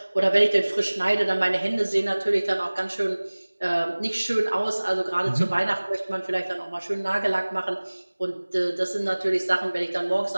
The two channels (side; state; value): both; inverted; correlation -1.00